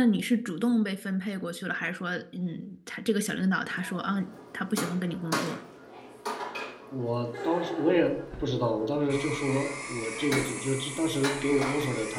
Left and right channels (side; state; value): both; identical; correlation 1.00